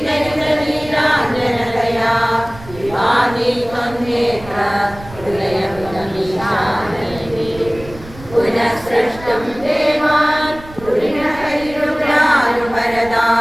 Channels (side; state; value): right; noise; rumble, 17 dB below the sound